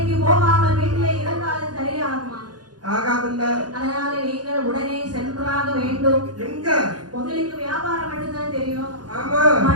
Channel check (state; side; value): late; left; 0.69 ms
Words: போகாமல் வீட்டிலே இருந்தாலும் சரியாகுமா? ஆகாதுல்ல. அதனால நீங்கள் உடனே சென்றாக வேண்டும். எங்க? உங்களுக்கு வியாபாரம் மட்டும்தான் தெரியும். ஆமா.